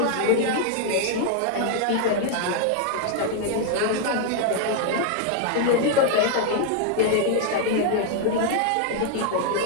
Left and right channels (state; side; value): different; both; correlation 0.00